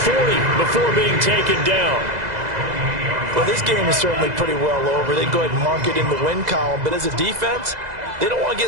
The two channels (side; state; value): left; late; 2.0 ms